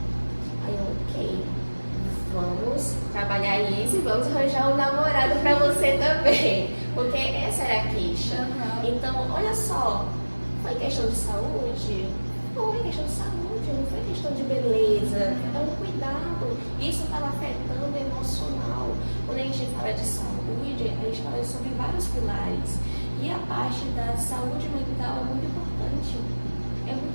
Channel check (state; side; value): inverted; both; correlation -1.00